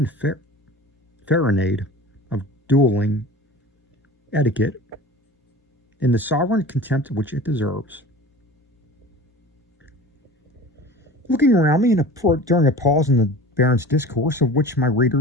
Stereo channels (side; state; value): both; normal; correlation 0.38